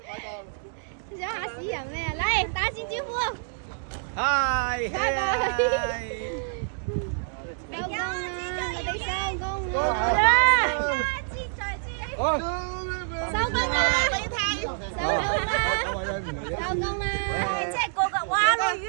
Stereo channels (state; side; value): silent; left; digital silence